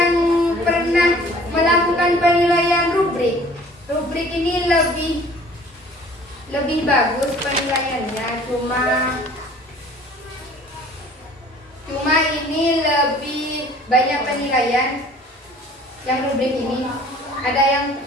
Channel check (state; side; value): normal; both; correlation 0.50